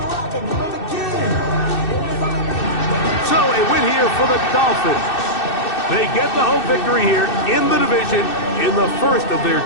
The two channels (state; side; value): late; right; 2.6 ms